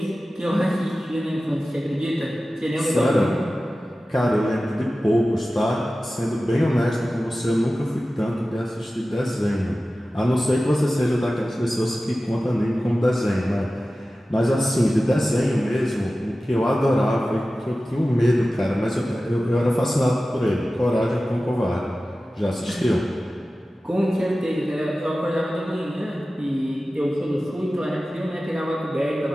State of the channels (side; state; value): both; normal; correlation 0.95